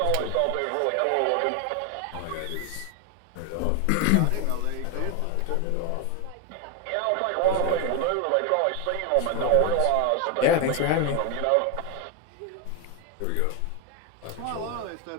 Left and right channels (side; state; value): both; different; correlation 0.01